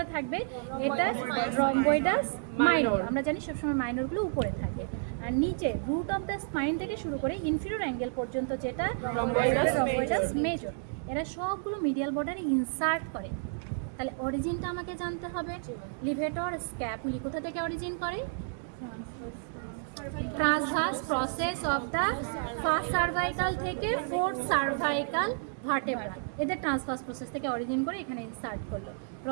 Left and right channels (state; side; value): silent; left; digital silence